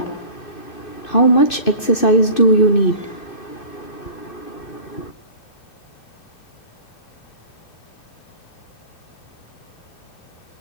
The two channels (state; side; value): late; right; 2.6 ms